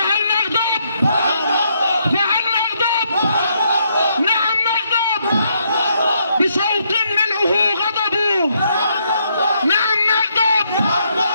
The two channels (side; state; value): both; inverted; correlation -0.74